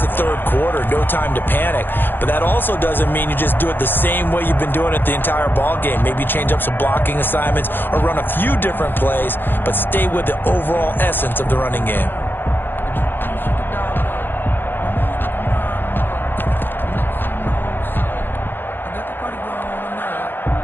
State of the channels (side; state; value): right; late; 0.098 ms